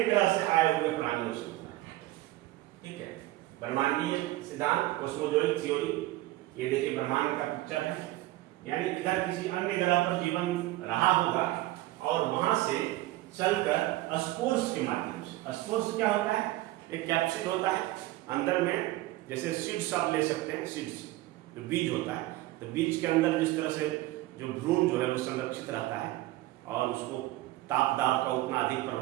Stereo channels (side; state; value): left; quieter; 17.3 dB